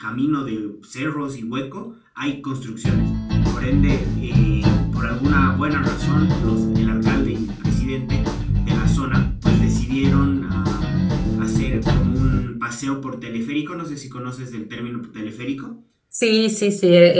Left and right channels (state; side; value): identical; both; correlation 1.00